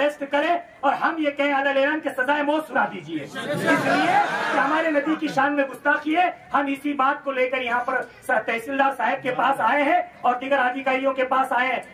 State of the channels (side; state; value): both; identical; correlation 1.00